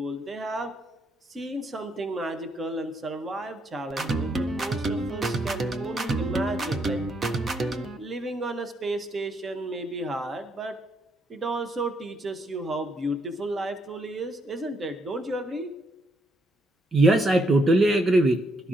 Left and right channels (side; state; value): both; normal; correlation 0.74